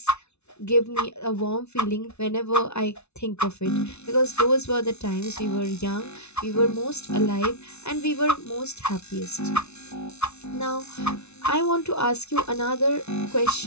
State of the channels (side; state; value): right; late; 0.81 ms